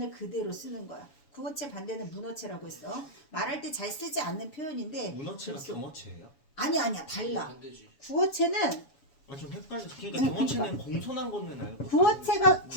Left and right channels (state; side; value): late; right; 7.1 ms